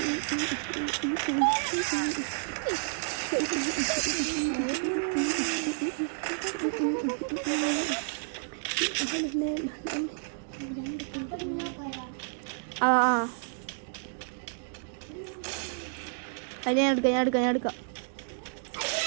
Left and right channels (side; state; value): left; silent; digital silence